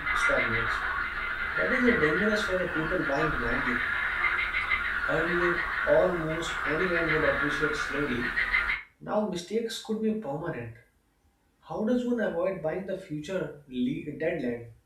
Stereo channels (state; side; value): identical; both; correlation 1.00